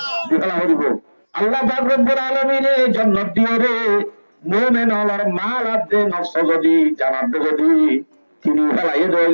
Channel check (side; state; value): both; inverted; correlation -1.00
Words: দিফেলা করিব। আল্লাহ পাক রব্বুল আলামিনে জান্নাত দিও রে মুমিন হলার মাল আদে নফস যদি জানাত যদি কিনি ফেলাই